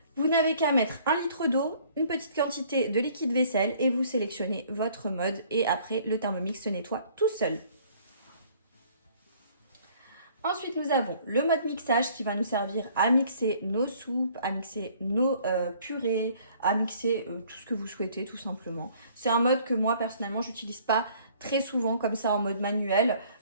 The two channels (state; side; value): inverted; both; correlation -0.57